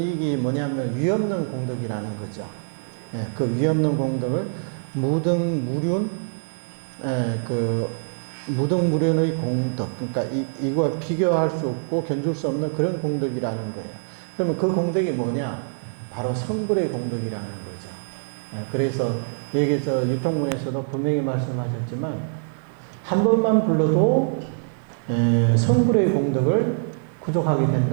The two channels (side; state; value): left; silent; 62 dB below the other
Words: 뭐냐면 위없는 공덕이라는 거죠. 예, 그 위없는 공덕을 무등무륜, 그 무등무륜의 공덕, 그러니까 이거와 비교할 수 없고 견줄 수 없는 그런 공덕이라는 거예요. 그러면 그 공덕이 뭐냐? 바로 성불의 공덕이라는 거죠. 예, 그래서 여기서 유통문에서도 분명히 말씀하셨지만 한 번만 불러도 성불의 공덕을 구족하게